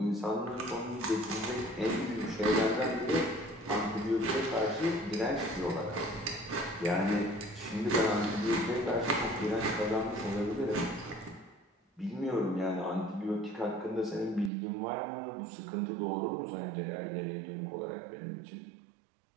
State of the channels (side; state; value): left; drops out; at 14.5 s